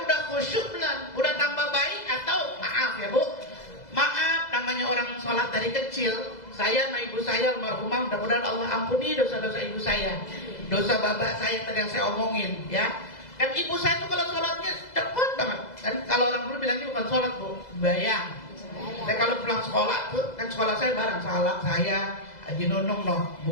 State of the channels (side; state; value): right; late; 2.0 ms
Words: udah khusyuk belum? Udah tambah baik atau maaf ya Bu? Maaf, namanya orang sholat dari kecil. Saya sama ibu saya almarhumah, mudah-mudahan Allah ampuni dosa-dosa ibu saya, dosa bapak saya tadi yang saya omongin ya. Kan ibu saya tuh kalau sholatnya cepet banget. Dan kalau orang dulu bilangnya bukan sholat Bu, bayang. Saya kalau pulang sekolah tuh, kan sekolah saya bareng saya, Haji Nunung